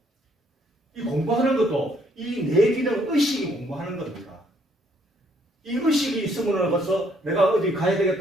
이 공부하는 것도 이 뇌 기능 의식이 공부하는 겁니다. 이 의식이 있으면 벌써 내가 어디 가야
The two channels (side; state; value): both; normal; correlation 0.68